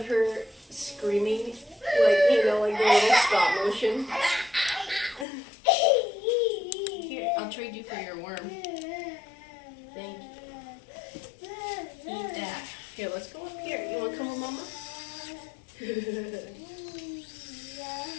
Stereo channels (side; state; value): right; drops out; at 5.2 s